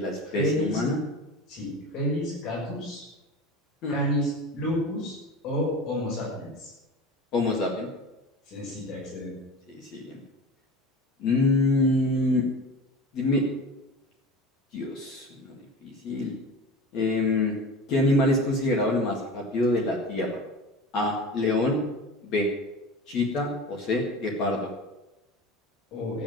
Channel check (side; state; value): both; normal; correlation 0.33